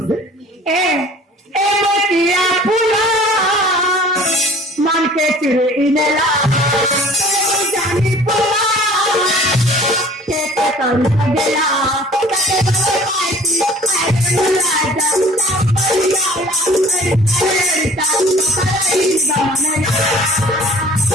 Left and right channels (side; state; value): both; normal; correlation 0.49